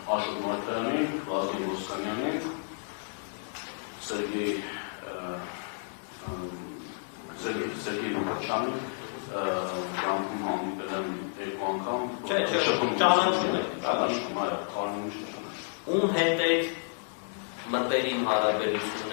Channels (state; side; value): silent; right; 57 dB below the other